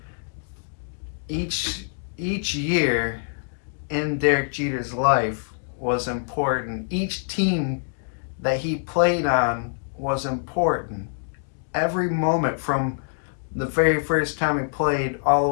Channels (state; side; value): silent; right; digital silence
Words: each year in Derek Jeter's life was important. Each team that he played on was important. Every moment from the very first time he played all the